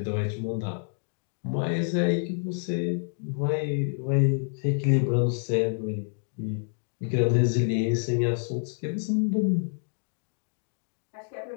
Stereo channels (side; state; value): right; silent; digital silence